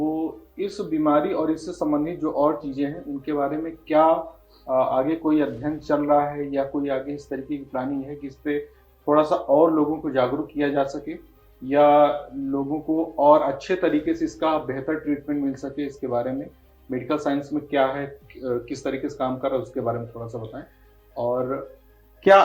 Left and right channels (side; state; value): both; identical; correlation 1.00